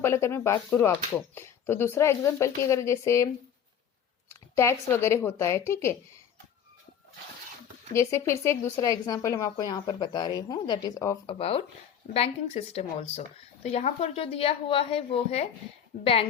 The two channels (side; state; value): right; quieter; 8.6 dB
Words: अगर मैं बात करूँ आपको, तो दूसरा एग्जाम्पल की अगर जैसे टैक्स वगैरह होता है, ठीक है, जैसे फिर से एक दूसरा एग्जाम्पल हम आपको यहाँ पर बता रही हूँ, that is of about banking system also. तो यहाँ पर जो दिया हुआ है वो है